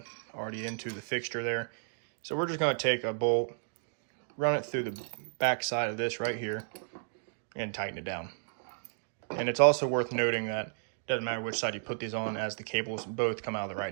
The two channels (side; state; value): left; silent; digital silence